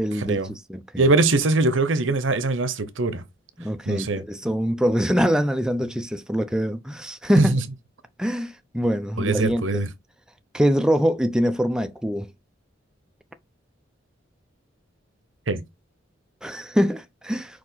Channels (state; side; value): normal; both; correlation 0.69